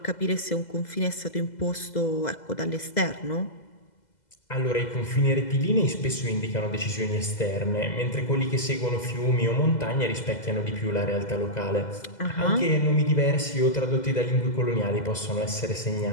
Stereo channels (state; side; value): late; right; 2.0 ms